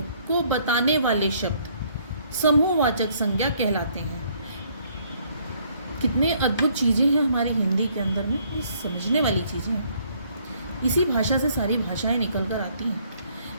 को बताने वाले शब्द समूहवाचक संज्ञा कहलाते हैं। कितने अद्भुत चीज़ें हैं हमारी हिंदी के अंदर में, ये समझने वाली चीज़ें हैं। इसी भाषा से सारी भाषाएं निकल कर आती हैं।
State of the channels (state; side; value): inverted; both; correlation -0.65